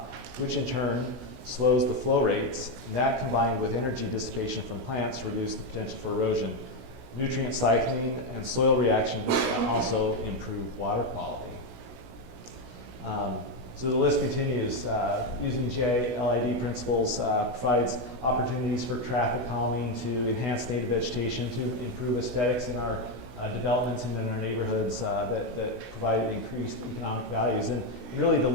which in turn slows the flow rates, and that combined with energy dissipation from plants reduce the potential for erosion. Nutrient cycling and soil reactions also improve water quality. So the list continues. Using GILID principles provides opportunities for traffic calming, to enhance native vegetation, to improve aesthetics in our developments and in our neighborhoods that provide increased economic values. And really the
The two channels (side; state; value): left; late; 16 ms